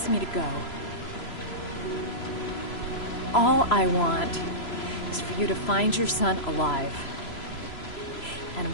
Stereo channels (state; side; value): late; right; 3.0 ms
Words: me to go. All I want is for you to find your son alive. And